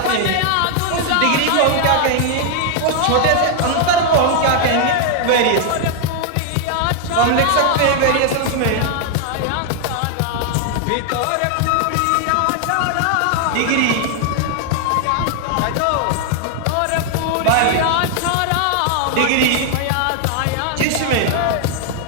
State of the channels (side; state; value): both; different; correlation 0.00